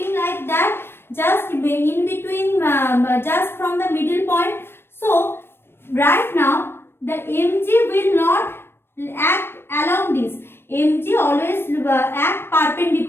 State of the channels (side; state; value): right; late; 0.11 ms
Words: like that, just in between, just from the middle point. So right now the mg will not act along this. Mg always act